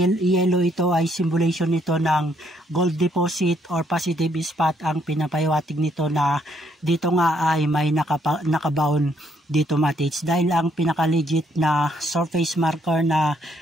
yellow, ito ay symbolization nito ng gold deposit or positive spot ang pinapahiwatig nito, na dito nga ay may nakabaon dito mga tids, dahil ang pinaka-legit na surface marker na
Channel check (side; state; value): both; normal; correlation 0.71